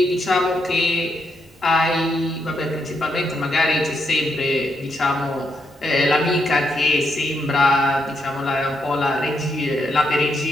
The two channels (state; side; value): normal; both; correlation 0.80